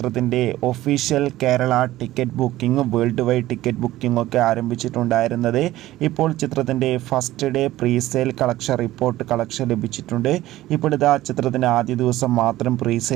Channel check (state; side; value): quieter; left; 15.7 dB